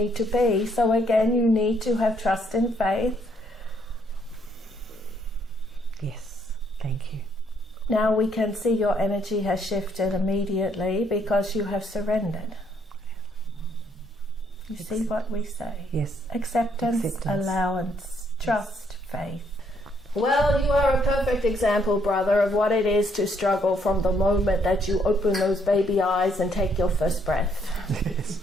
to be. So again, you need to have trust and faith. Yes. Thank you. Now we can see your energy has shifted immediately because you have surrendered. You see what we say? Yes. Acceptance, allowance, trust, faith. Well, you are a perfect example, brother, of what it is to struggle from the moment that you open those baby eyes and take your first breath. Yes.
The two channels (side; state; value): both; normal; correlation 0.70